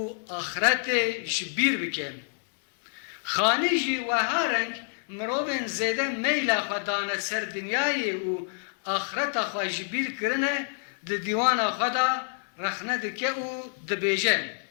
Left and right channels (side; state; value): right; silent; digital silence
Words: axretê ji bîr bike. Xanî jî weha reng mirovên zêde meyla xwe dane ser dinyayê û axreta xwe ji bîr kirine di dîwana xwe da rexne dike û dibêje.